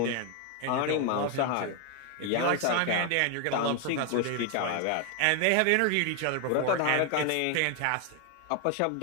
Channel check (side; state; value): both; different; correlation 0.01